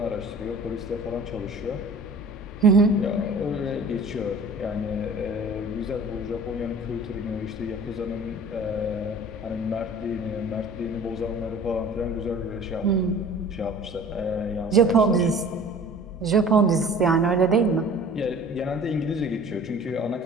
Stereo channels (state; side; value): normal; both; correlation 0.45